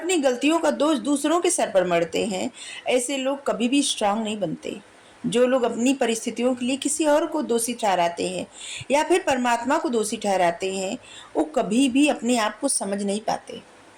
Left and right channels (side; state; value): both; identical; correlation 1.00